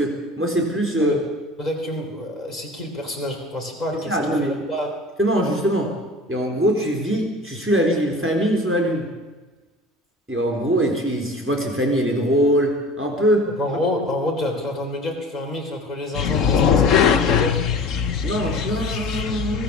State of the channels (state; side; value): normal; both; correlation 0.40